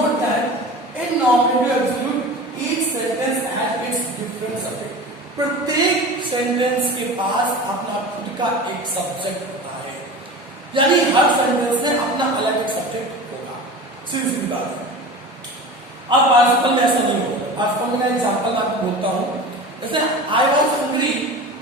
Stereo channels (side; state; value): both; normal; correlation 0.34